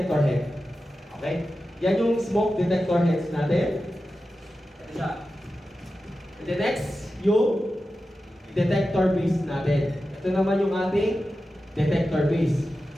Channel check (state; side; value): normal; both; correlation 0.92